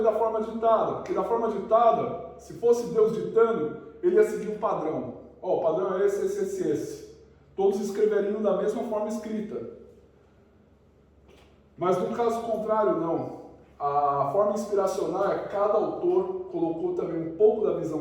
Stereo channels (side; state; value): both; identical; correlation 1.00